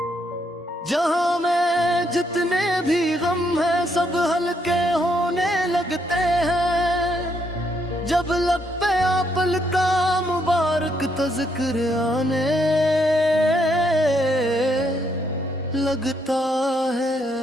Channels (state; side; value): normal; both; correlation 0.74